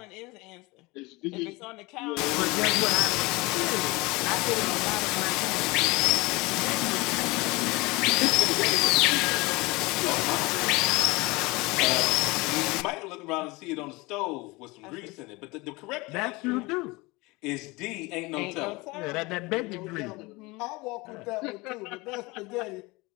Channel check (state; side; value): quieter; right; 23.7 dB